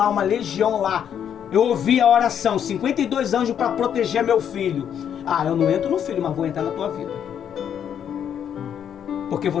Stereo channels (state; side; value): quieter; right; 8.8 dB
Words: uma legião lá. Eu ouvi a oração, 52 anjos para proteger meu filho. Ah, eu não entro no filho, mas vou entrar na tua vida. Porque